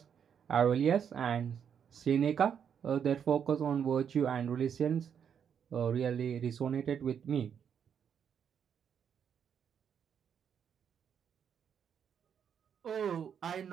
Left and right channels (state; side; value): quieter; left; 7.9 dB